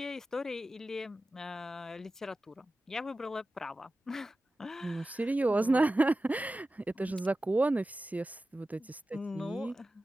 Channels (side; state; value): both; normal; correlation 0.94